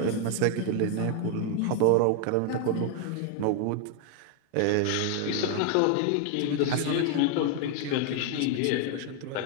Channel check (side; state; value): both; different; correlation 0.00